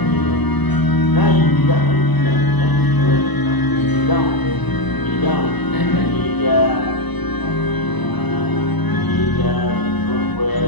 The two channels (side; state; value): right; late; 1.0 ms